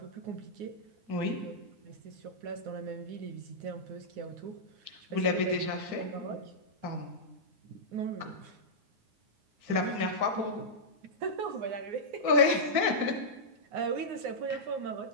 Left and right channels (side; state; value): left; late; 9.6 ms